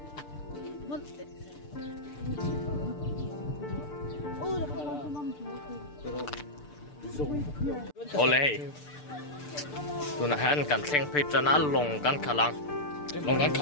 oleh tu na han kan thleng phei chana long kan khalang long kan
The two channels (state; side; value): late; right; 6.8 ms